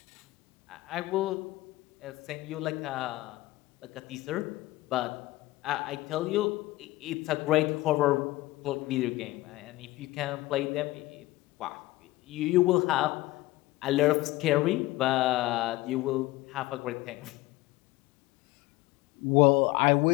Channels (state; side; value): quieter; right; 18.6 dB